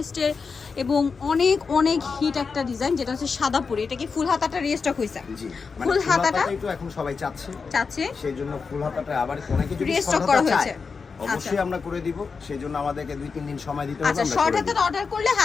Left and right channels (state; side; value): quieter; right; 5.1 dB